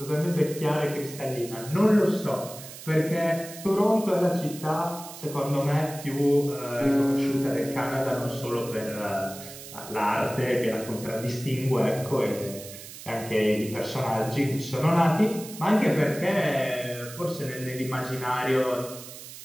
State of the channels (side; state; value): right; noise; hiss, 14 dB below the sound